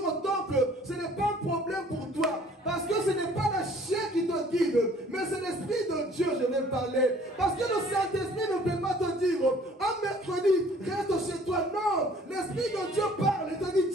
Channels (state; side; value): normal; both; correlation 0.55